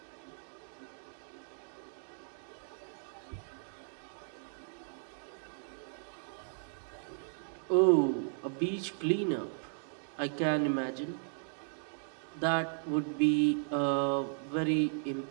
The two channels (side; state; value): left; silent; digital silence